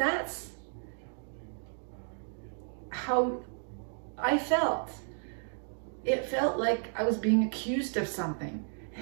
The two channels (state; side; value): silent; left; 56 dB below the other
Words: how I felt. It felt like I was being accused of something.